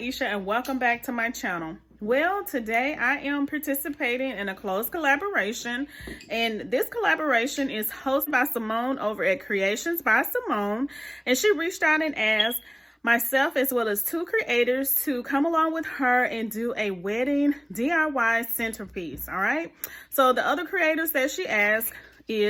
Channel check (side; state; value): both; identical; correlation 1.00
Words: and welcome back to my channel. Well, today I am participating in a close collaboration, and this collaboration is hosted by Simone over at Creations by Simone, and she reached out and asked myself as well as 2 creators to come along with her and do a wedding DIY centerpiece. All right, so the other creators that she asked